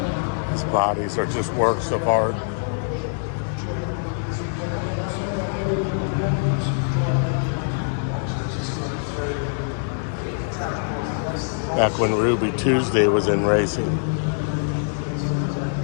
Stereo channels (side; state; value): right; silent; digital silence